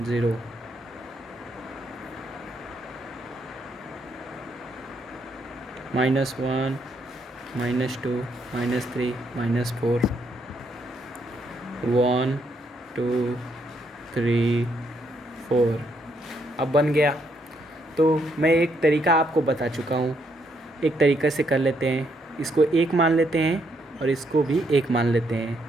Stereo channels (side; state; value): both; normal; correlation 0.74